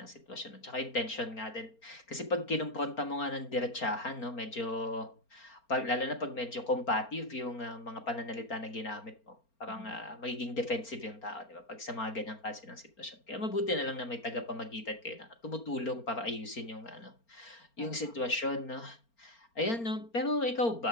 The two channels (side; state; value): right; late; 4.4 ms